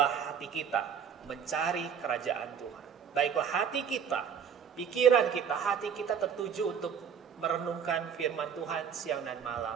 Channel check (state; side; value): quieter; left; 7.6 dB